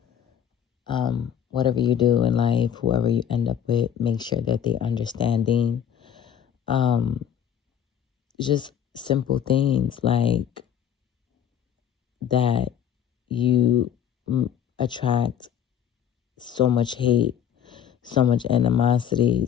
Whatever you do in life, whoever you end up with, make sure that they're understanding. Um, just simple things like that you attract so much hate, so much animosity,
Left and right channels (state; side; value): quieter; right; 9.1 dB